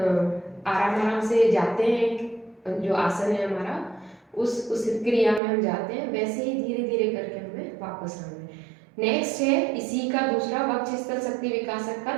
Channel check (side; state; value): left; drops out; at 5.4 s